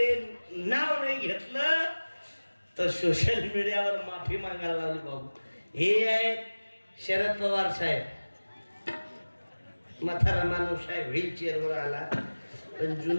नाव नाही घेतलं तर सोशल मीडियावर माफी मागायला लावली बाबू. हे आहेत शरद पवार साहेब. म्हातारा माणूस आहे, व्हीलचेअरवर आला पण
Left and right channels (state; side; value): inverted; both; correlation -1.00